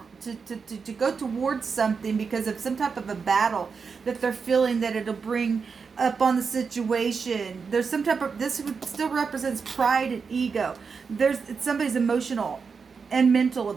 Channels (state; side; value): quieter; left; 5.4 dB